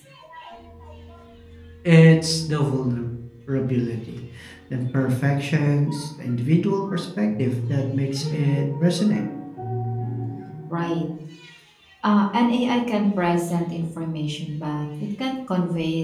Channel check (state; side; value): identical; both; correlation 1.00